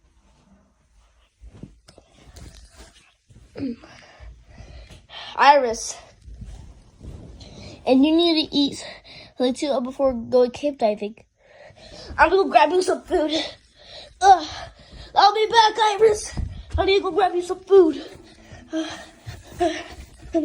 Never mind. Iris, and you need to eat something too before going cave diving. I'm gonna go grab you some food. I'll be back, Iris. I need to go grab you some food. I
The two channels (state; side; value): identical; both; correlation 1.00